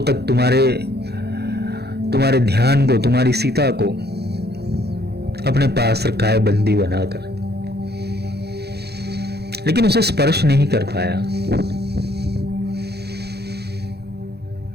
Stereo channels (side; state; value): left; late; 0.48 ms